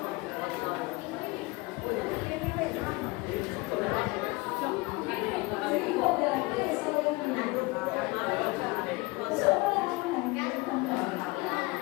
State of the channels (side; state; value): right; quieter; 23.9 dB